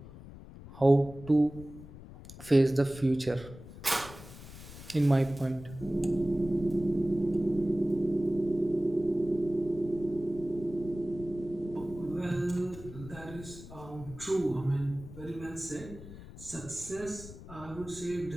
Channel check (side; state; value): left; noise; rumble, 15 dB below the sound